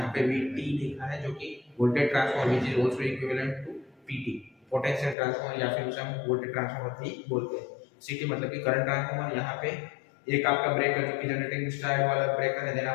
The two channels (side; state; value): right; drops out; at 5.2 s